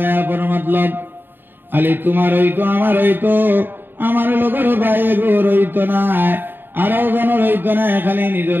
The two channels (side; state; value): left; late; 0.096 ms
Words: যায় আপন মতলব, খালি তোমার হইতো আমার হইতো, আমার লোকের বাইরে গোর হইতো না, আরো জনের হইতো না, খালি